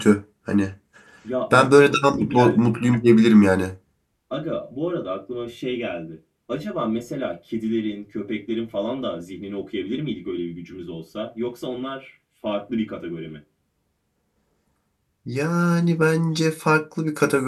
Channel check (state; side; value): identical; both; correlation 1.00